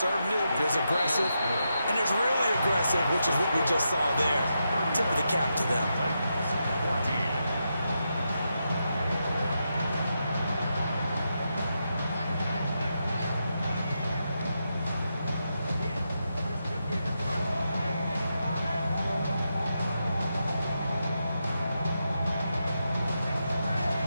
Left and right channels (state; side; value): inverted; both; correlation -0.85